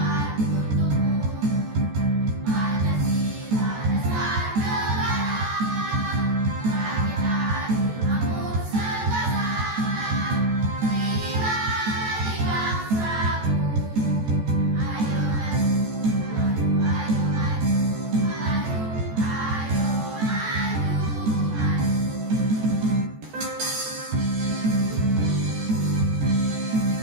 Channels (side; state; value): left; late; 14 ms